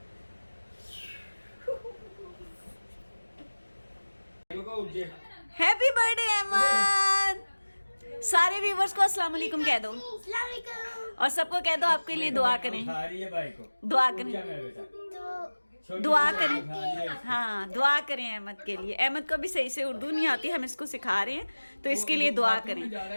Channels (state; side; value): inverted; both; correlation -1.00